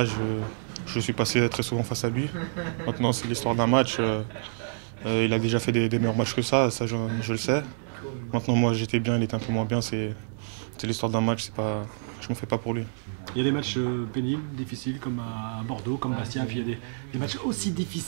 je suis passé très souvent face à lui. Maintenant c'est l'histoire d'un match, il a déjà fait des meilleurs matchs que ça je le sais. Maintenant moi j'étais bien, il était un peu moins bien, c'est l'histoire d'un match, je me fais pas pour lui. Il y a des matchs pénibles, difficiles, comme à Bordeaux, comme Bastia, puis il y a des matchs aussi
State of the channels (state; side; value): silent; left; digital silence